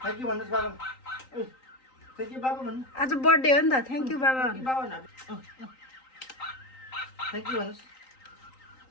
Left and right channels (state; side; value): late; right; 3.9 ms